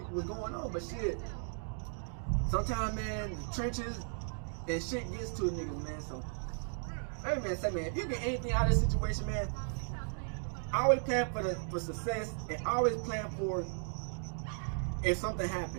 on. But shit, sometimes, man, the trenches and shit gets to a niggas, man. So, hey man, say man, if you get anything out of this situation, man, always plan for success and always plan for if something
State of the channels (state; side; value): silent; left; 54 dB below the other